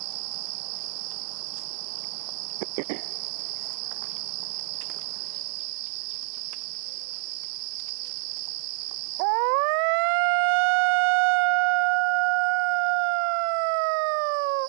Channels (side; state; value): left; silent; 60 dB below the other